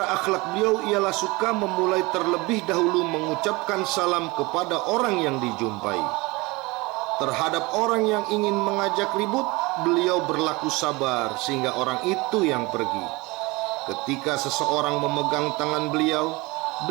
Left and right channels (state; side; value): quieter; left; 23.7 dB